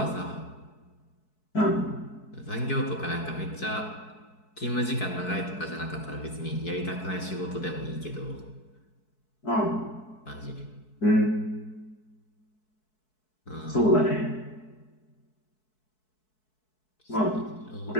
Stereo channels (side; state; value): right; late; 4.6 ms